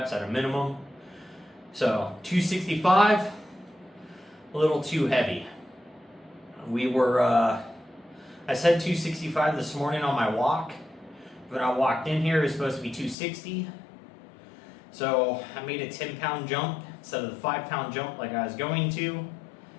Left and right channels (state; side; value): drops out; right; at 13.2 s